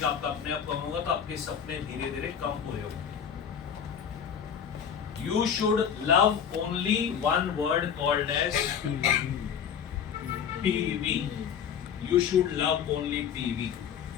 आपका अपने आप कम होगा, तो आपके सपने धीरे धीरे कम पूरे होंगे। You should love only one word called as PV. You should love only PV,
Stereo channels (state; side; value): quieter; right; 8.0 dB